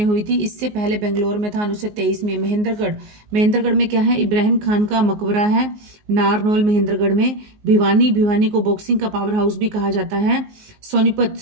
हुई थी। इससे पहले बेंगलोर में था 1923 में। महेंद्रगढ़ में क्या है? इब्राहिम खान का मकबरा है। नारनौल महेंद्रगढ़ में। भिवानी को बॉक्सिंग का पावर हाउस भी कहा जाता है।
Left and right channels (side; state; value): left; late; 19 ms